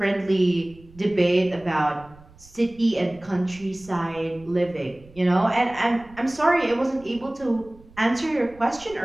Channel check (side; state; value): right; noise; rumble, 24 dB below the sound